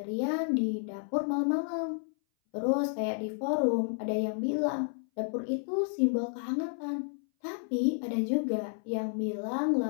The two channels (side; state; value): right; silent; 57 dB below the other